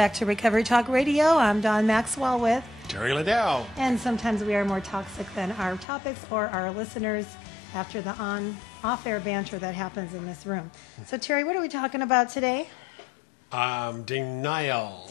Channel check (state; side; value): drops out; right; at 5.9 s